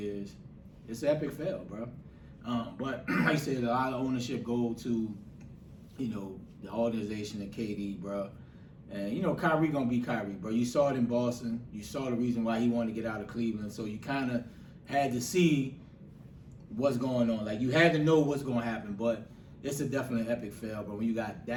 it's an epic fail, bro. But like I said, a lot of ownership go to, the organization and KD, bro. And, Kyrie going to be Kyrie, bro. You saw it in Boston. You saw the reason why he wanted to get out of Cleveland. So you kind of had to see what's going on. Like, you had to know what's going to happen. But it's a definitely epic fail, bro, when you got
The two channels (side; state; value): both; identical; correlation 1.00